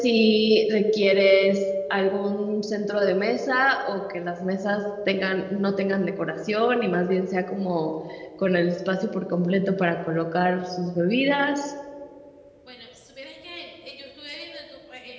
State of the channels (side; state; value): both; identical; correlation 1.00